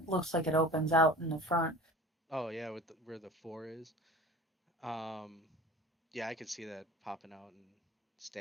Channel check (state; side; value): normal; both; correlation 0.39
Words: looks like it opens out in the front. Oh yeah, with where the four is. Um, yeah, I could see that popping out and